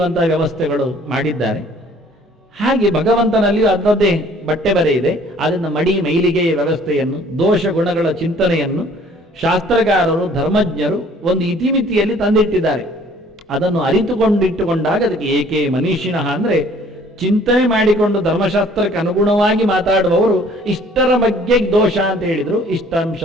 ವ್ಯವಸ್ಥೆಗಳು ಮಾಡಿದ್ದಾರೆ. ಹಾಗೆ ಭಗವಂತನಲ್ಲಿಯೂ ಅದರದ್ದೇ ಬಟ್ಟೆ ಬರೆ ಇದೆ. ಅದನ್ನು ಮಡಿ ಮೈಲಿಗೆಯ ವ್ಯವಸ್ಥೆಯನ್ನು, ದೋಷ ಗುಣಗಳ ಚಿಂತನೆಯನ್ನು ಶಾಸ್ತ್ರಕಾರರು, ಧರ್ಮಜ್ಞರು ಒಂದು ಇತಿಮಿತಿಯಲ್ಲಿ ತಂದಿಟ್ಟಿದ್ದಾರೆ. ಅದನ್ನು ಅರಿತುಕೊಂಡಿಟ್ಟುಕೊಂಡಾಗ ಅದಕ್ಕೆ ಏಕೆ ಮನೀಷಿಣಃ ಅಂದರೆ ಚಿಂತನೆ ಮಾಡಿಕೊಂಡು ಧರ್ಮಶಾಸ್ತ್ರಕ್ಕೆ ಅನುಗುಣವಾಗಿ ಮಾತಾಡುವವರು ಇಷ್ಟರ ಬಗ್ಗೆ ದೋಷ ಅಂತ ಹೇಳಿದರು,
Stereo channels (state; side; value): normal; both; correlation 0.56